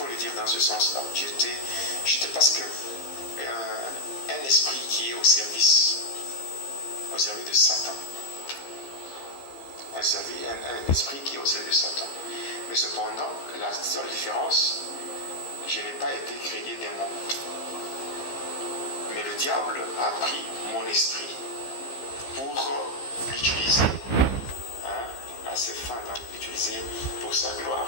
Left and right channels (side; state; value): right; late; 15 ms